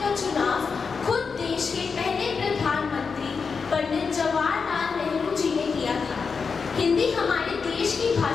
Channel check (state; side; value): quieter; right; 5.3 dB